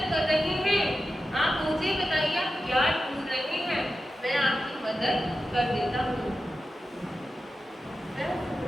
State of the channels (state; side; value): normal; both; correlation 0.92